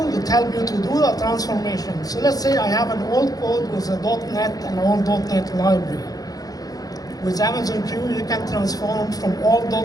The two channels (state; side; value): late; right; 0.18 ms